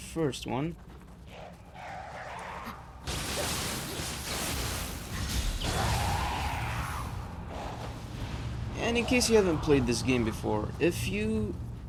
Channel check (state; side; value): identical; both; correlation 1.00